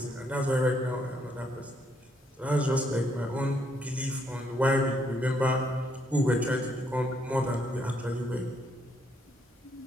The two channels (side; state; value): both; normal; correlation 0.73